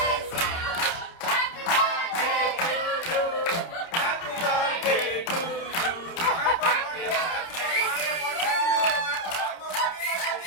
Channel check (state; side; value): late; right; 30 ms